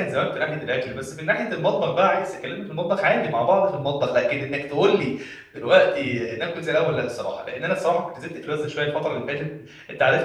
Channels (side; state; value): both; identical; correlation 1.00